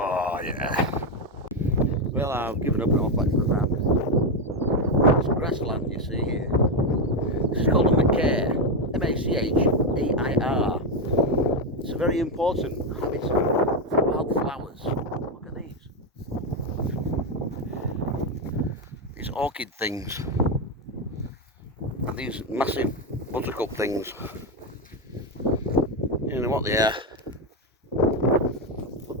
yeah. Well, I've given up and off back to the van. It's grassland you see here. This is called a macaire. M-A-C-H-A-I-R. It's a very important habitat for wildflowers. Look at these. These orchid things. And these massive buttercup things. You know what they are.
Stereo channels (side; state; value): both; normal; correlation 0.08